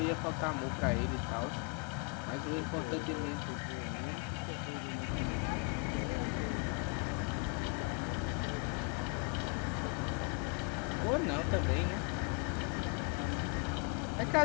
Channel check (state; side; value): quieter; right; 35.8 dB